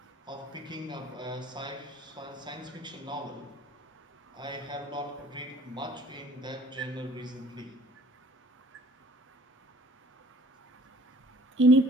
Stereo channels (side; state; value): both; normal; correlation 0.53